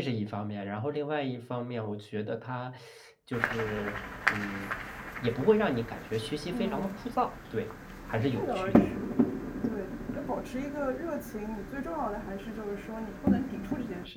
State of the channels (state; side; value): identical; both; correlation 1.00